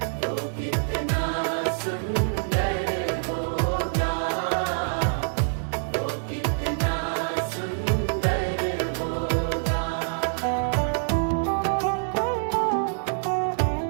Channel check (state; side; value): silent; left; 58 dB below the other